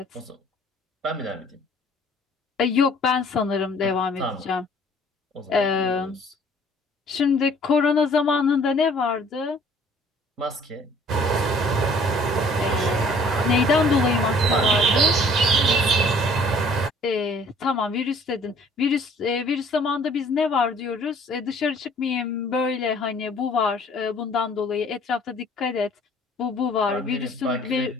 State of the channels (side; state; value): both; normal; correlation 0.55